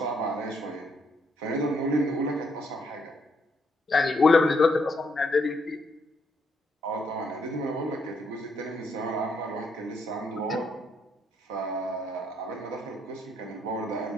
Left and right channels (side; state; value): both; normal; correlation 0.73